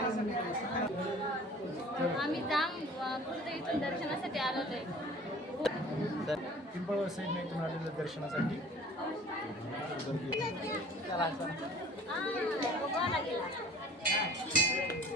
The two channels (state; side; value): normal; both; correlation 0.47